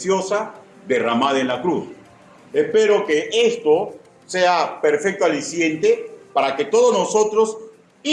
derramada en la cruz. Espero que esto sea perfecto aliciente para que todos nosotros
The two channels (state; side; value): identical; both; correlation 1.00